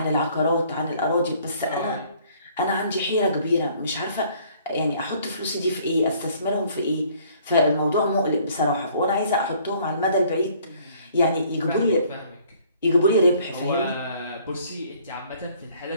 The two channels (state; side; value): inverted; both; correlation -0.59